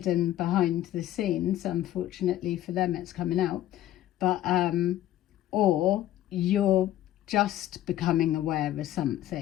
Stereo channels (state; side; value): quieter; right; 13.1 dB